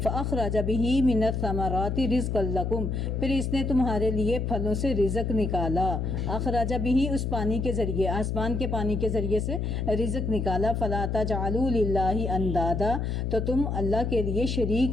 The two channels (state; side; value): noise; left; hum, 1 dB below the sound